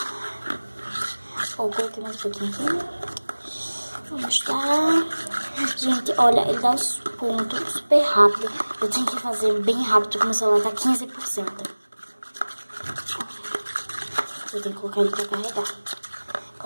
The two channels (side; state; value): both; inverted; correlation -1.00